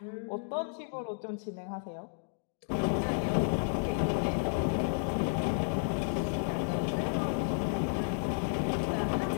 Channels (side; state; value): right; silent; digital silence